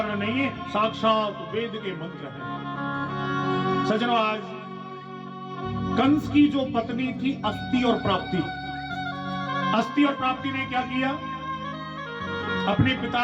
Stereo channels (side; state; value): both; identical; correlation 1.00